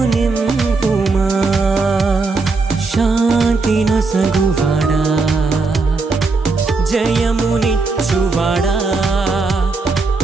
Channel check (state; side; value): quieter; left; 3.9 dB